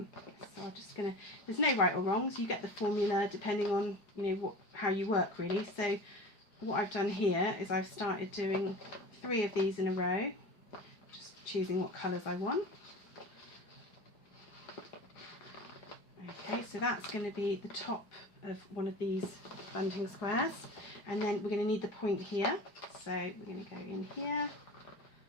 just gonna, there's no right or wrongs, you get the formula depending on, you know, how you work really. So what I've done here is I've started doing 3 of these in a row, just choosing what colours I want. Okay, so that's going to be the top of one of these bunting squares, and then we're going to need the point here, so we're going to go in here,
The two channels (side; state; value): right; late; 4.8 ms